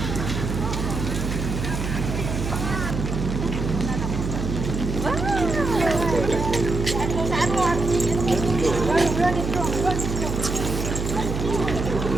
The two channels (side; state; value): right; noise; hum, 3 dB below the sound